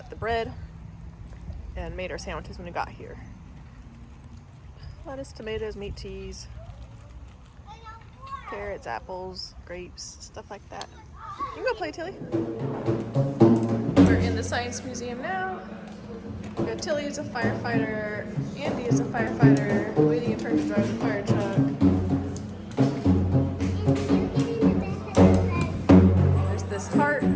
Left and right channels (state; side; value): identical; both; correlation 1.00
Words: the bread and made our sandwiches when we got here. Lettuce, tomatoes, meat, cheese, carrots, apples, grapes, stuff like that. You can go play, Tilly. the Science Museum now. We got Tilly is a firefighter, Andy is a firefighter, waiting a turn to drive the fire truck. There's this cart